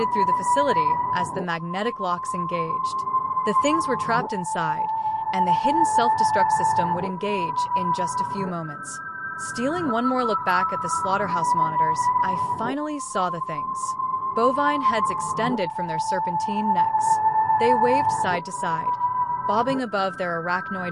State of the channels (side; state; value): both; identical; correlation 1.00